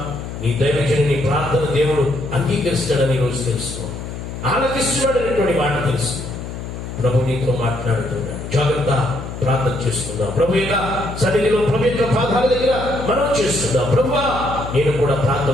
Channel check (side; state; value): left; noise; hum, 8 dB below the sound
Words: నీ దైవజనుని ప్రార్థన దేవుడు అంగీకరిస్తాడని ఈరోజు తెలుసుకో, ఆలకిస్తున్నాడు అనేటువంటి మాట తెలుసు. ప్రభు నీతో మాట్లాడుతున్నాడు. జాగ్రత్త, ప్రార్థన చేసుకుందాం. ప్రభు యొక్క సన్నిధిలో ప్రభు యొక్క పాదాల దగ్గర మనం చేస్తున్నాం. ప్రభువా, నేను కూడా